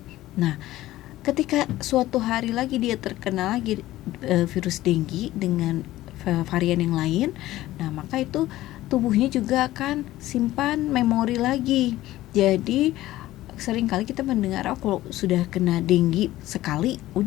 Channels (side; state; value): right; quieter; 15.8 dB